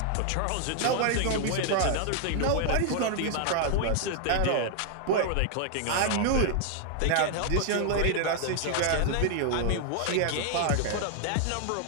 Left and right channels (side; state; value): both; different; correlation 0.00